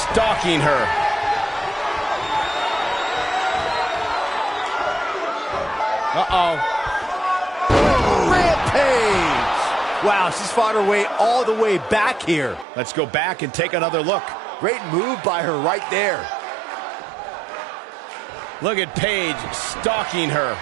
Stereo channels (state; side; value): drops out; left; at 12.7 s